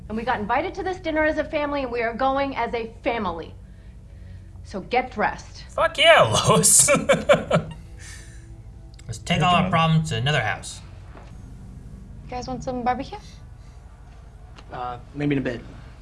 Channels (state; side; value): identical; both; correlation 1.00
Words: And we got invited to this dinner as a family, and we are going as a family. So get dressed. Fuck yeah, Lois. Let's take all our problems to another house. You guys want some barbecue? Maybe in a bit.